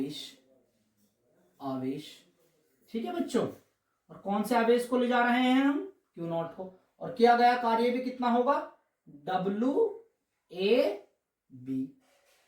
ठीक है बच्चों। और कौन से आवेश को ले जा रहे हैं हम, Q0 को, और किया गया कार्य भी कितना होगा, WAB।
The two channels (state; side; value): identical; both; correlation 1.00